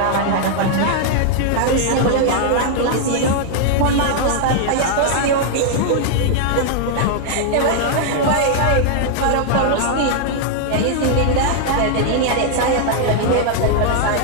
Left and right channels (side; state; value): both; different; correlation 0.00